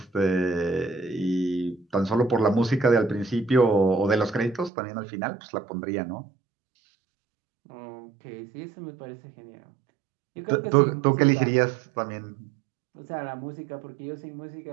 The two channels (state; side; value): drops out; left; at 4.7 s